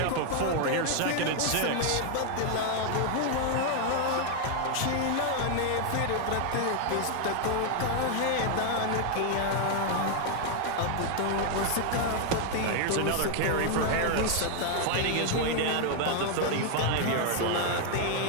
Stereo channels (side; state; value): both; different; correlation 0.00